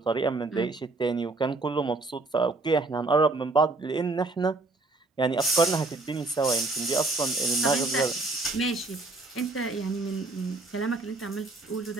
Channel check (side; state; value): left; quieter; 3.3 dB